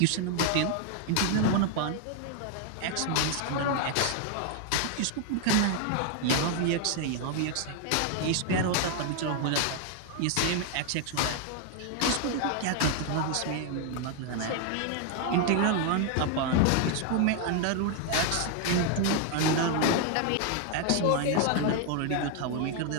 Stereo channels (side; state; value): both; different; correlation 0.00